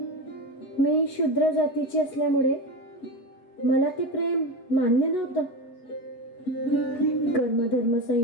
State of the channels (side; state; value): right; late; 8.1 ms